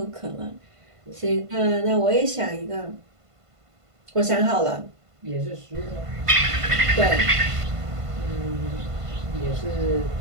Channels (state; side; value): late; left; 1.5 ms